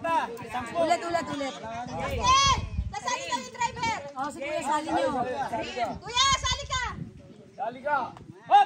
Ulit. Nasali ka yung driver. Si Kuya, sali niyo. Kuya, sali ka. Dali ka.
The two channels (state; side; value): identical; both; correlation 1.00